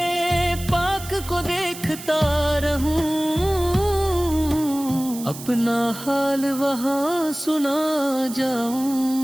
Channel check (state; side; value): noise; right; hiss, 13 dB below the sound